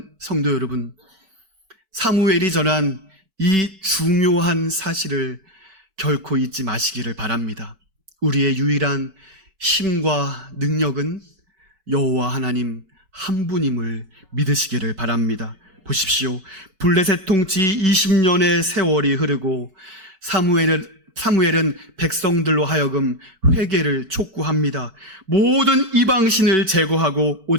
성도 여러분, 사무엘이 전한 이 중요한 사실을 결코 잊지 마시기를 바랍니다. 우리의 유일한 힘과 능력은 여호와 하나님 한 분임을 믿으시기를 바랍니다. 보십시오. 블레셋 통치 20년의 세월이 흐르고 사무엘은 백성들로 하여금 회개를 촉구합니다. 모든 이방신을 제거하고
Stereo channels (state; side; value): late; left; 5.2 ms